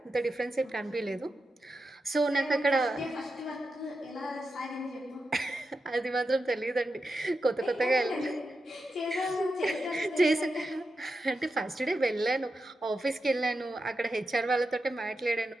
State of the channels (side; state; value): both; normal; correlation 0.89